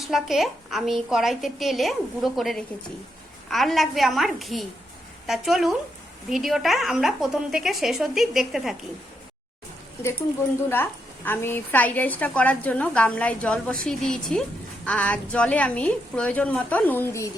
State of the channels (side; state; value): both; normal; correlation 0.80